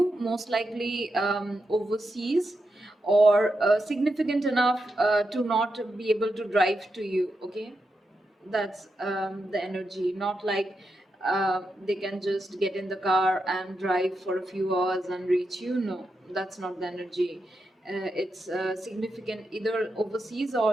most likely overseas, or significant enough to not be able to drive to you. Okay, that's the energy. Not like they can just get in the car and drive for a few hours and reach you. No, that's not the energy. It's significant, either overseas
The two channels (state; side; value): normal; both; correlation 0.86